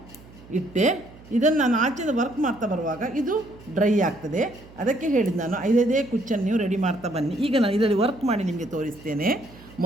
ಇಟ್ಟೆ, ಇದನ್ನು ನಾನು ಆಚೆಯಿಂದ ವರ್ಕ್ ಮಾಡ್ತಾ ಬರುವಾಗ ಇದು ಡ್ರೈ ಆಗ್ತದೆ. ಅದಕ್ಕೆ ಹೇಳಿದ್ದು ನಾನು 5 ಕುಚ್ಚನ್ನು ನೀವು ರೆಡಿ ಮಾಡ್ತಾ ಬನ್ನಿ. ಈಗ ನಾನು ಇದರಲ್ಲಿ ವರ್ಕ್ ಮಾಡಿ ನಿಮಗೆ ತೋರಿಸ್ತೇನೆ.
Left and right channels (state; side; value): noise; right; hum, 21 dB below the sound